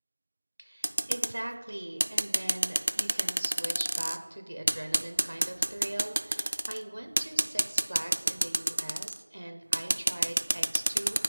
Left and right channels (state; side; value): inverted; both; correlation -1.00